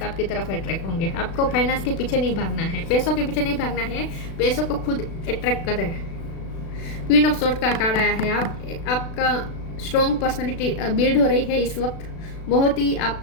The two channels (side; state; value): right; late; 36 ms